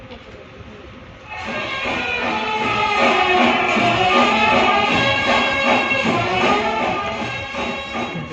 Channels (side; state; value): both; identical; correlation 1.00